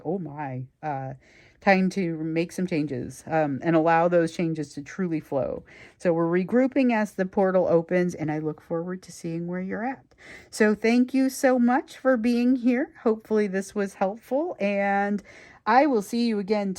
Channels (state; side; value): identical; both; correlation 1.00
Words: oh my. time to make some changes and allow those changes to truly flow. So we're regrouping as the portal opens, and I look forward to seeing where you're at. So thank you so much for being here. Hopefully this was helpful, and I will see you again